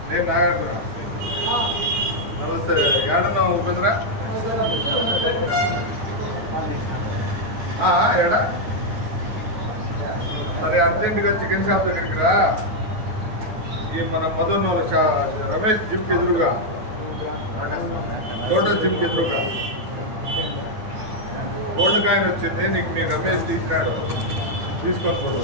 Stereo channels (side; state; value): left; late; 8.9 ms